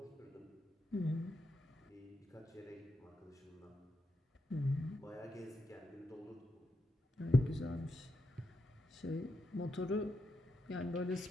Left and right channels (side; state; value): both; normal; correlation 0.84